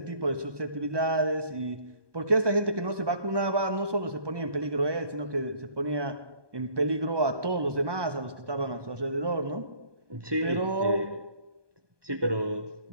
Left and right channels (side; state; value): left; late; 1.2 ms